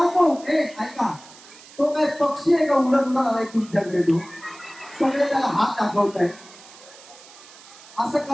हे ऐका, तो काय पक्षी आहे का उडत उडत आलाय तुमच्याकडे? तो सगळे त्याला हात दाखवत आहे. असं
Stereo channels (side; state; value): right; noise; hiss, 21 dB below the sound